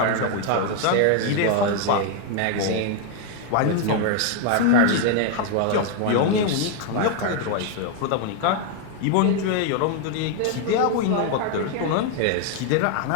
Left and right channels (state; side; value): different; both; correlation 0.01